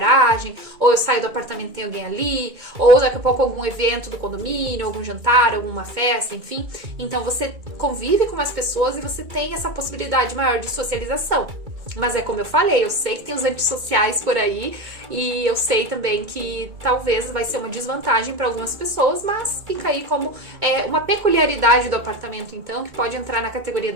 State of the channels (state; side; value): late; left; 2.2 ms